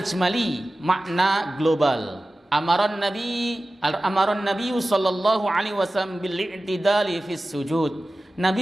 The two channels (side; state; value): both; normal; correlation 0.95